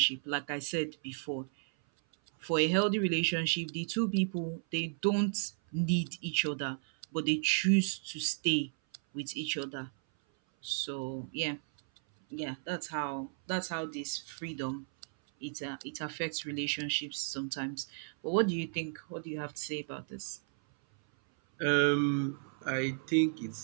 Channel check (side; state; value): left; silent; 55 dB below the other